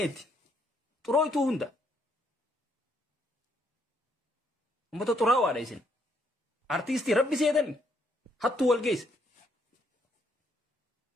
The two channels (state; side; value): normal; both; correlation 0.72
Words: xurooytuu hunda ummata xuraawaadha isin. Artisti Rabbi seedan hattu wal geesse.